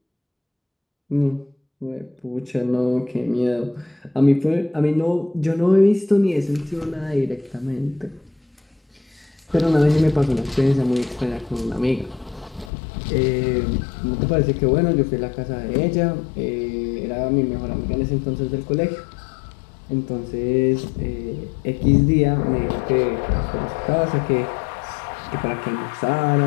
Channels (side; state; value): right; drops out; at 12.7 s